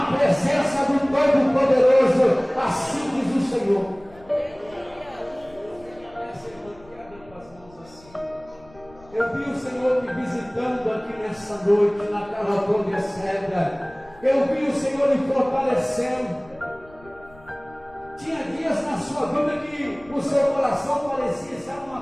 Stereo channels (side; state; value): left; noise; rumble, 25 dB below the sound